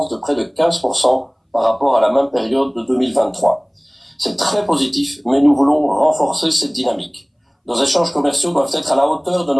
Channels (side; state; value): both; identical; correlation 1.00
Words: de près de 15% par rapport à la même période de 2023. C'est très positif, mais nous voulons renforcer cette dynamique. Nos échanges commerciaux doivent être à la hauteur de